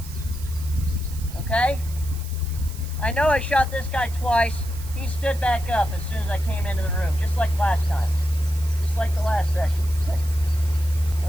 Okay? I know I shot this guy twice. He stood back up as soon as I came into the room, just like last time. Just like the last session.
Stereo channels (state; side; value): noise; right; hiss, 17 dB below the sound